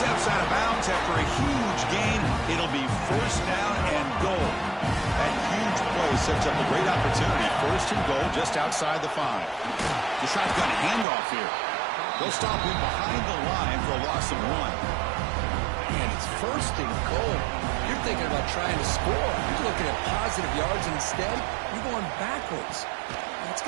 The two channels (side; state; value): left; drops out; at 11.1 s